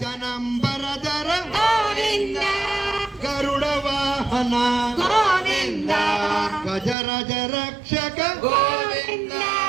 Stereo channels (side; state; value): left; drops out; at 7.0 s